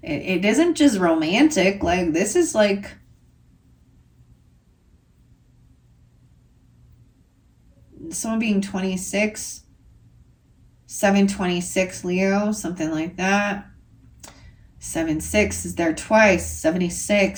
romantic. Like, this is like someone being 26, 726 Leo, something like that. 7-6 is there twice.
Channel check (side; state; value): both; identical; correlation 1.00